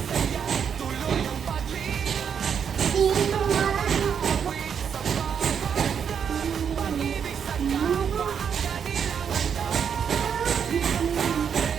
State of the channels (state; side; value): quieter; left; 7.5 dB